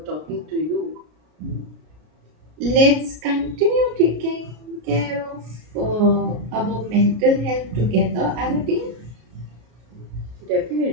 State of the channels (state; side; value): late; left; 33 ms